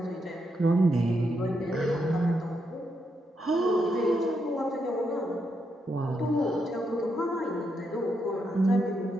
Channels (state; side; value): normal; both; correlation 0.81